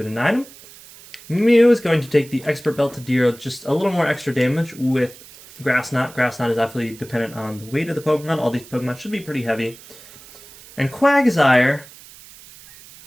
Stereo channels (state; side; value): noise; right; hiss, 20 dB below the sound